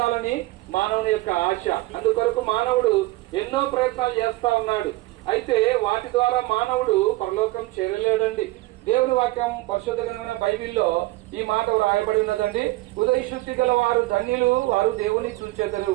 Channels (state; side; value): quieter; left; 19.8 dB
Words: మానవుని యొక్క ఆశ. అందుకొరకు మానవుడు ఎన్నో ప్రయత్నాలు చేస్తా ఉన్నాడు. అయితే వాటి ద్వారా మానవుడు పరలోకం చేరలేడండి. దేవుని వాక్యం పరిశుద్ధ గ్రంథమైన బైబిల్లో ఈ మాట రాయబడి ఉన్నదండి. హృదయ శుద్ధి గల వారు ధన్యులు, వారు దేవుని చూచెదరు.